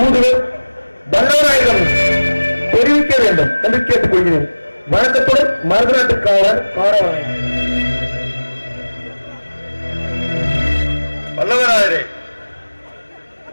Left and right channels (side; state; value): both; inverted; correlation -1.00